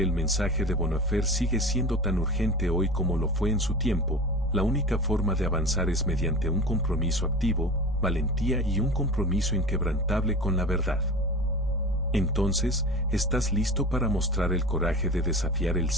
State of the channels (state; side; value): normal; both; correlation 0.33